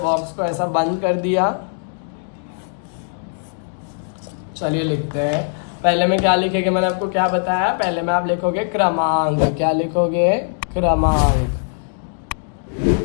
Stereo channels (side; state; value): right; silent; digital silence